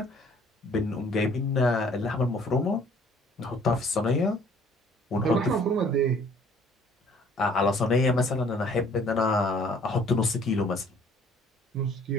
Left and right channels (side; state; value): both; normal; correlation 0.57